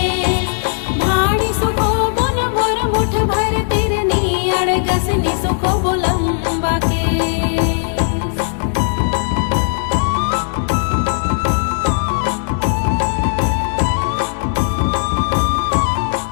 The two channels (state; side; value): silent; right; digital silence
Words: भाड़ी सुखो वो न मोर मुठ भर तिरनी अड़गसनी सुखो वो लंबा